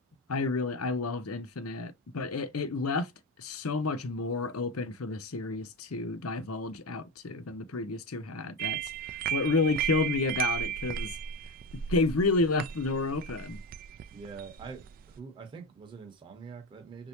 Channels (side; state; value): both; normal; correlation 0.19